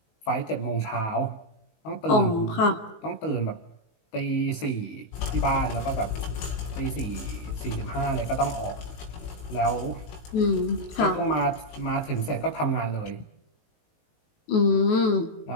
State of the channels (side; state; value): right; late; 19 ms